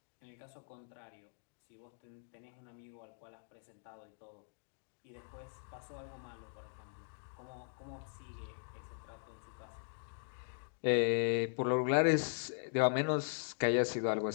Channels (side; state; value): right; silent; digital silence